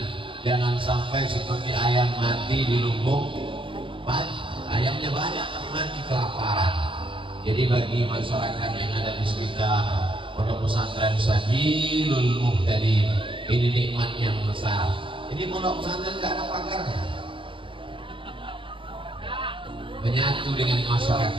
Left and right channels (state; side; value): late; left; 0.25 ms